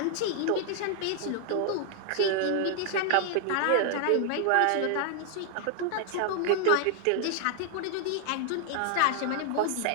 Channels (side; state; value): both; different; correlation 0.00